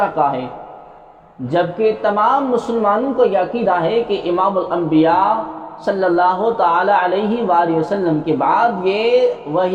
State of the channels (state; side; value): identical; both; correlation 1.00